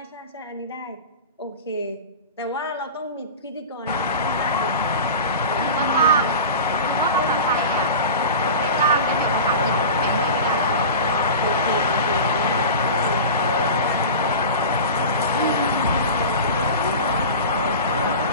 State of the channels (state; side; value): inverted; both; correlation -0.31